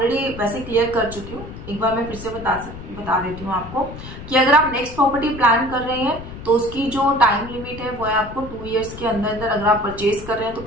वैसे क्लियर कर चुकी हूँ, एक बार मैं फिर से बता देती हूँ आपको कि अगर आप नेक्स्ट प्रॉपर्टी प्लान कर रहे हैं तो उसकी जो टाइम लिमिट है वो है आपको 2 years के अंदर अंदर अगर आप परचेज कर रहे हैं तो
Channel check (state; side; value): noise; left; rumble, 12 dB below the sound